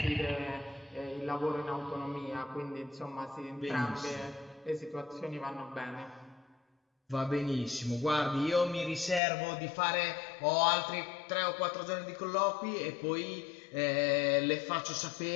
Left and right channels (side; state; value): right; drops out; at 9.2 s